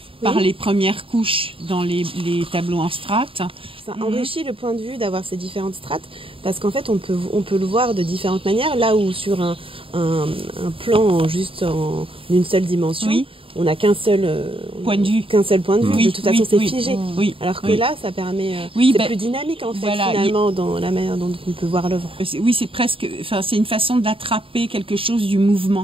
par les premières couches dans les tableaux en strates. Ça enrichit le point de vue d'avoir ces différentes strates parce qu'en fait on peut le voir de différentes manières, là où sur un plan juste en une seule dimension, on n'a qu'un seul point de vue. De toute façon c'est figé. Alors que là ça permet c'est plus dynamique en fait finalement dans la manière dont on peut voir l'œuvre. Oui, c'est presque, c'est une façon d'attraper quelque chose du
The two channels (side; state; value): left; late; 0.26 ms